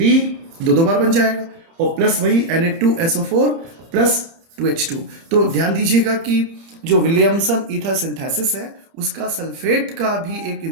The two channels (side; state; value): left; late; 30 ms